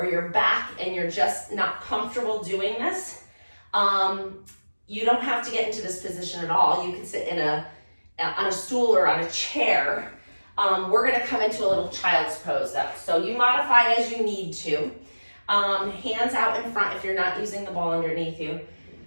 your back and you're just not comfortable doing this, you don't have to get into this position at all. You can sit on a stool or on a chair. We're gonna come into a little child's pose though. So you modify as you need to. Hands out in front if you're not using the ball underneath you.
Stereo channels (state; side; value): inverted; both; correlation -1.00